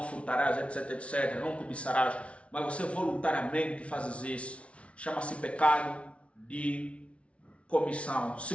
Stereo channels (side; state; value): right; late; 0.062 ms